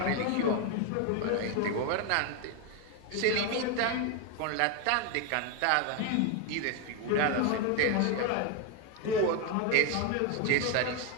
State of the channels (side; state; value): both; different; correlation 0.01